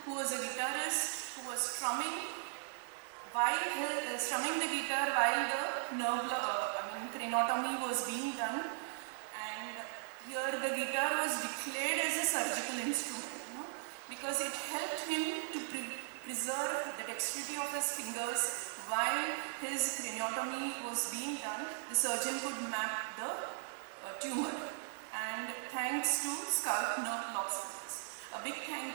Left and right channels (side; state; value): left; silent; 52 dB below the other